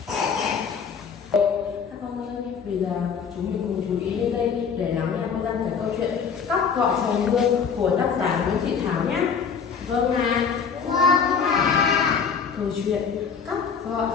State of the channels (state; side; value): quieter; right; 6.3 dB